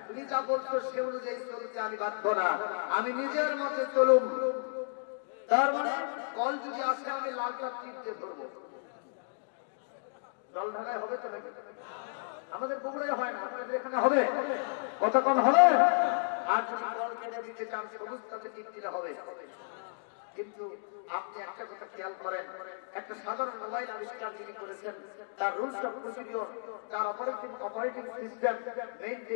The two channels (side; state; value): right; silent; digital silence